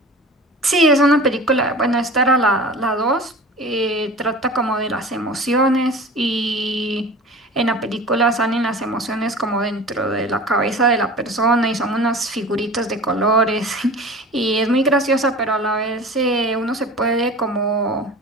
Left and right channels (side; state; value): both; normal; correlation 0.38